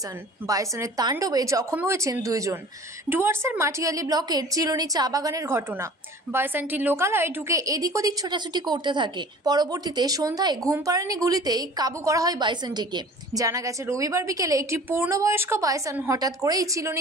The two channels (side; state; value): both; normal; correlation 0.44